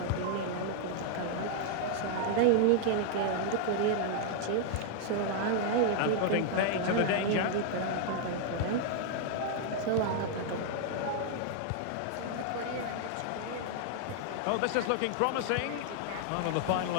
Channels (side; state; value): both; different; correlation 0.00